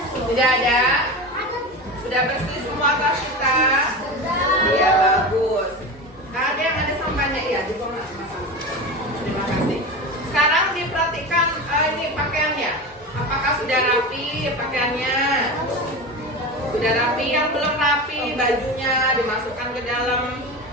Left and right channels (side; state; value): both; normal; correlation 0.26